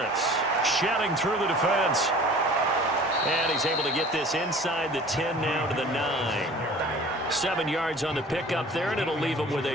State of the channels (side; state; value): both; normal; correlation 0.46